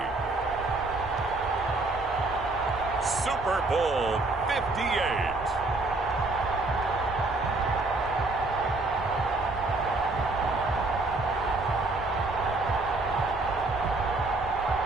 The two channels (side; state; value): left; quieter; 3.1 dB